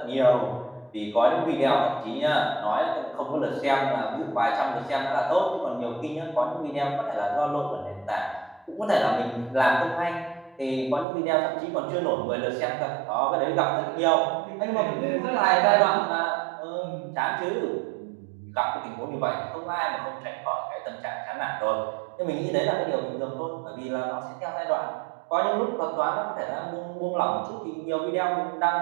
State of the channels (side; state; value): left; drops out; at 11.1 s